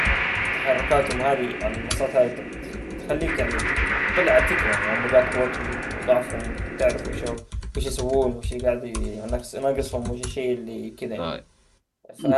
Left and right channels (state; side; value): identical; both; correlation 1.00